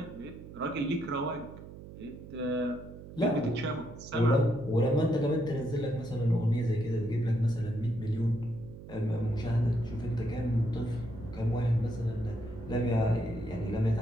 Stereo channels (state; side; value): noise; right; hum, 14 dB below the sound